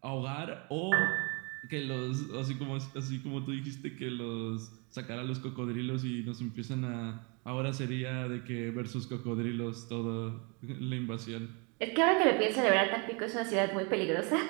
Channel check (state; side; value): quieter; left; 32.8 dB